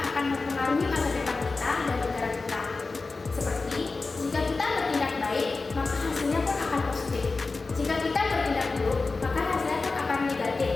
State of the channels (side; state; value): right; quieter; 3.8 dB